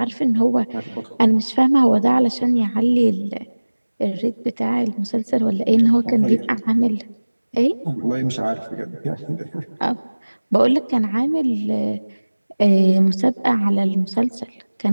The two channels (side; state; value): both; inverted; correlation -1.00